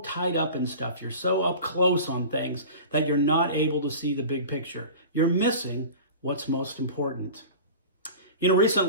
up in stuff, you're so up close on things that you're not able to see the big picture. You're missing what's most important. You know,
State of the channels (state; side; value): inverted; both; correlation -0.36